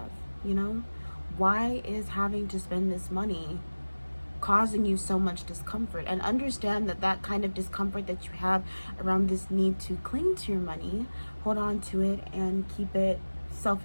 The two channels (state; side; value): inverted; both; correlation -1.00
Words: You know, why is having to spend this money causing you so much discomfort? And understand that that kind of discomfort that you have around this need to cling to your money, hold on to it and keep it